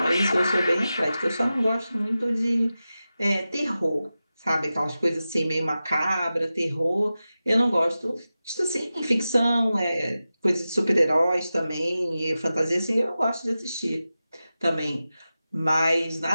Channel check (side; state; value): both; inverted; correlation -0.94